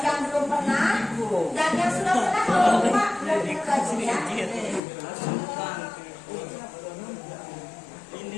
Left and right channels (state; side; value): drops out; right; at 4.8 s